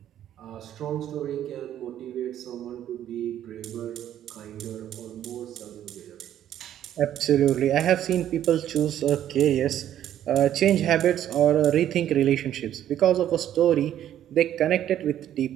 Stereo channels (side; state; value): left; quieter; 11.2 dB